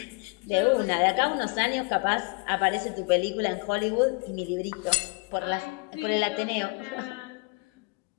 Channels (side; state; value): right; quieter; 29.8 dB